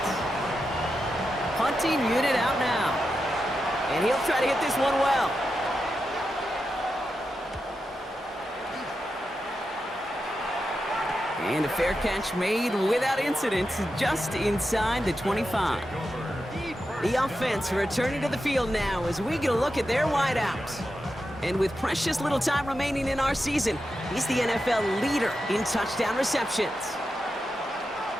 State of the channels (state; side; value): normal; both; correlation 0.89